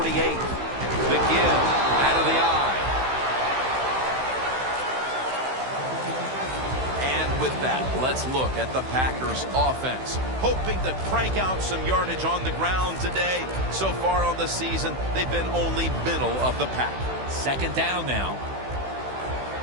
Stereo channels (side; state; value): left; late; 16 ms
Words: The give out of the eye. And with that, let's look at the Packers offense. Hoping to crank out some yardage on the ground today. So far on the season, they've been only middle of the pack. Second down now.